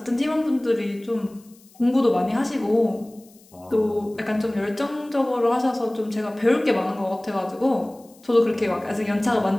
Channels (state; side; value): noise; left; hiss, 28 dB below the sound